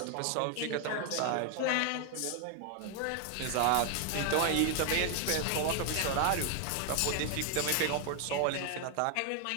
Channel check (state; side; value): different; both; correlation 0.00